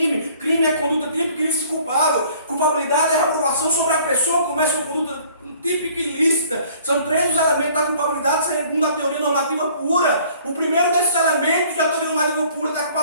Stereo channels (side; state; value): both; inverted; correlation -0.55